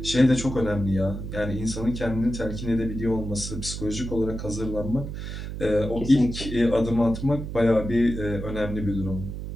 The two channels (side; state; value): right; noise; hum, 7 dB below the sound